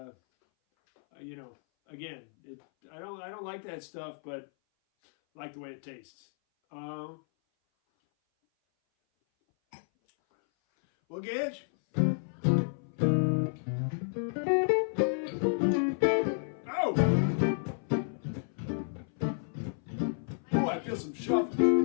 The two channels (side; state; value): right; silent; 57 dB below the other